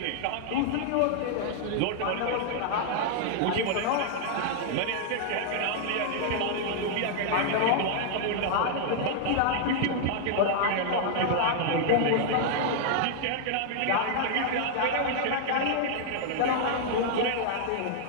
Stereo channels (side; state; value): both; different; correlation -0.01